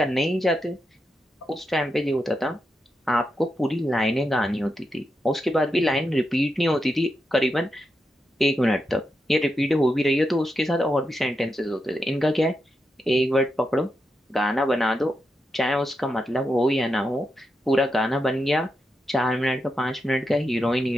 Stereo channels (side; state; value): both; normal; correlation 0.86